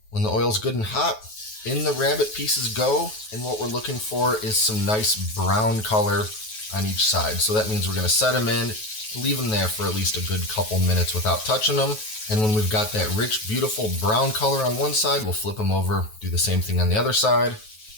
When the oil's good and hot, in the rabbit pieces go, and what we're looking for is some nice brown color on each side. So that means we're going to set them in, leave them there for at least a good couple minutes without touching them. And when we've got that rich, beautiful brown color on one side, we'll flip them over, do the same thing on the other side.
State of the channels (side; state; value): right; late; 9.3 ms